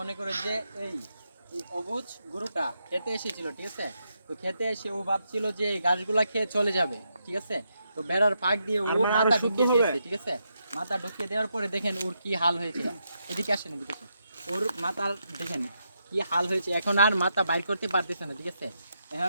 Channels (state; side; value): inverted; both; correlation -0.82